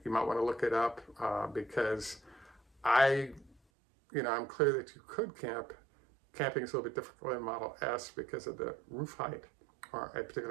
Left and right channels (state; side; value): drops out; left; at 3.6 s